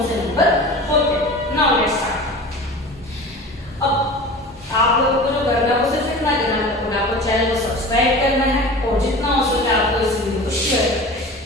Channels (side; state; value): both; normal; correlation 0.36